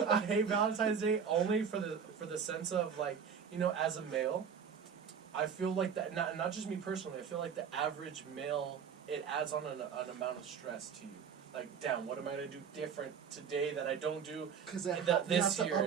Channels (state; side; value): quieter; left; 7.0 dB